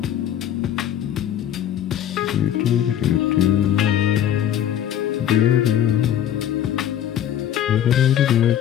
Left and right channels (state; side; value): quieter; right; 10.5 dB